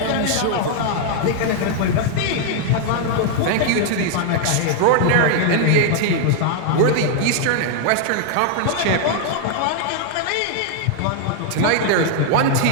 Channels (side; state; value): both; different; correlation 0.00